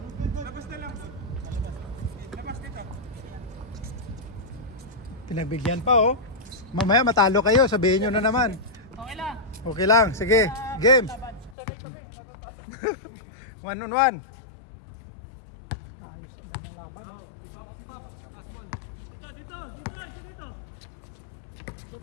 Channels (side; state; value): right; drops out; at 11.6 s